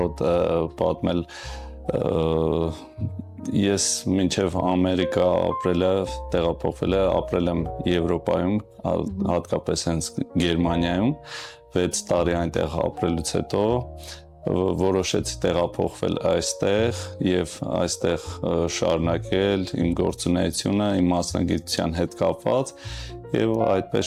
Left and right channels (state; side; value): identical; both; correlation 1.00